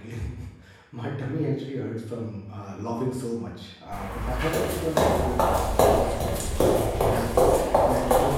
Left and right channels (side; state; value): both; identical; correlation 1.00